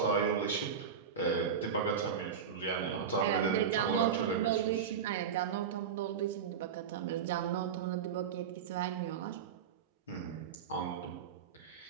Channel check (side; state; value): left; quieter; 7.2 dB